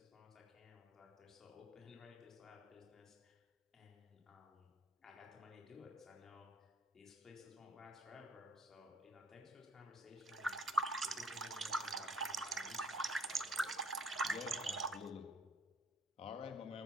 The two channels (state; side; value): normal; both; correlation 0.56